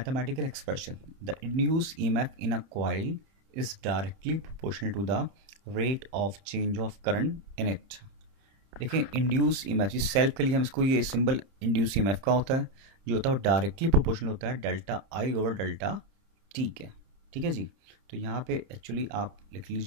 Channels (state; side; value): late; left; 30 ms